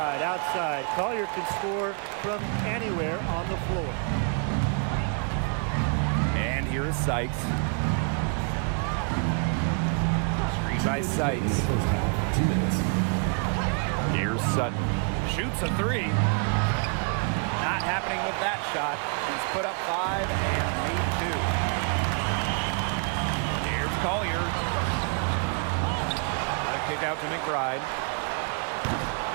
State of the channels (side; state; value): left; quieter; 39.7 dB